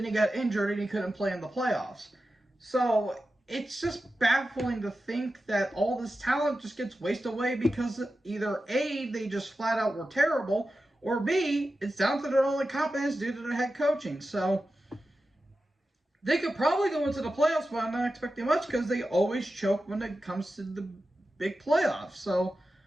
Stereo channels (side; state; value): both; normal; correlation 0.92